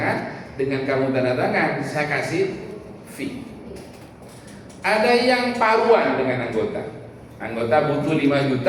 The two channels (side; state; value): both; identical; correlation 1.00